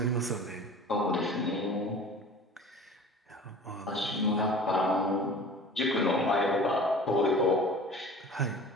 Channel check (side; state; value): both; normal; correlation 0.41